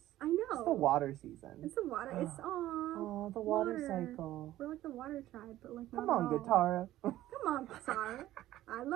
I know. It's the water season. It's the water. It's the water cycle. We're like the water tribe, but like come on, Guitarra. Come on, Guitarra. I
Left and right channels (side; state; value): left; quieter; 14.5 dB